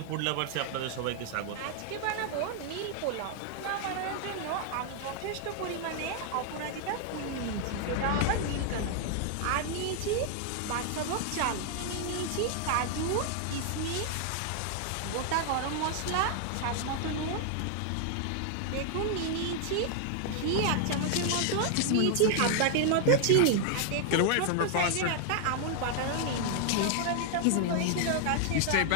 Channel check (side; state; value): both; different; correlation 0.00